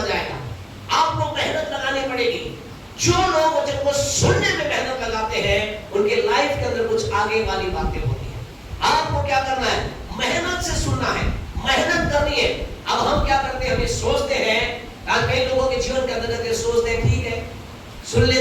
जाएगा, आपको मेहनत लगानी पड़ेगी। जो लोग वचन को सुनने में मेहनत लगाते हैं, उनके लाइफ के अंदर कुछ आगे वाली बातें होती हैं। आपको क्या करना है, मेहनत से सुनना है, मेहनत करनी है। अब हम क्या करते हैं, हम ये सोचते हैं, आज कई लोगों के जीवन के अंदर सोचते हैं ठीक है सुन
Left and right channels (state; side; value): identical; both; correlation 1.00